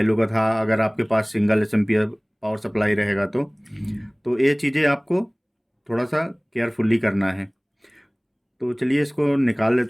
का था, अगर आपके पास सिंगल एम्पियर पावर सप्लाई रहेगा तो ये चीज़ें आपको थोड़ा सा केयरफुली करना है। तो चलिए इसको निकाल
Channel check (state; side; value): identical; both; correlation 1.00